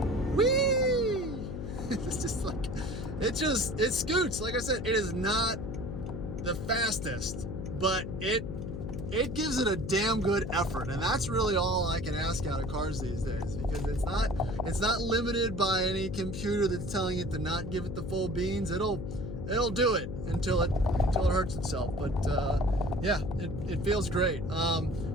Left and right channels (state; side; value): noise; left; hum, 6 dB below the sound